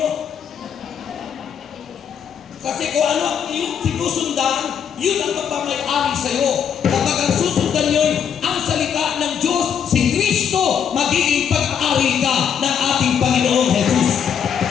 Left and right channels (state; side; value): quieter; right; 7.9 dB